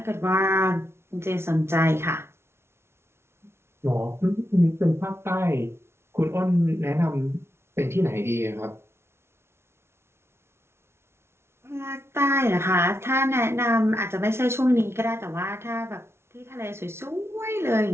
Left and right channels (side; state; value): left; late; 0.12 ms